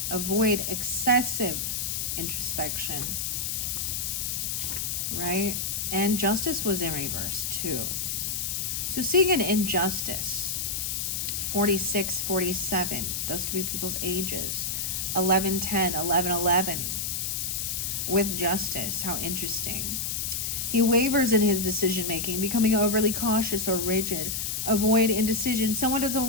Avoid excessive introspection. Right? And Justice was in reverse too. So seeing an injustice. 46, 47. Those could be people's ages. 11, 10, 11, 11. with justice. How interesting. He wavers in his decision making, becoming overly cautious or rigid. Avoid indecision. Someone doesn't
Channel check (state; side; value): noise; left; hiss, 1 dB below the sound